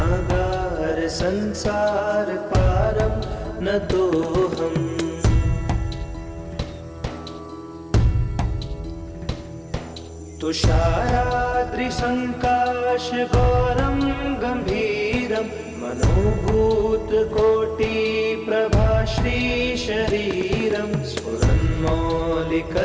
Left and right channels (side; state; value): both; identical; correlation 1.00